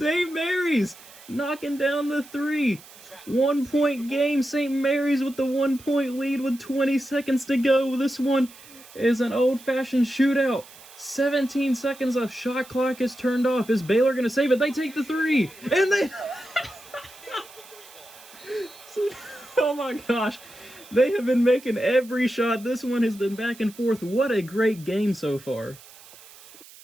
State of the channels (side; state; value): right; noise; hiss, 21 dB below the sound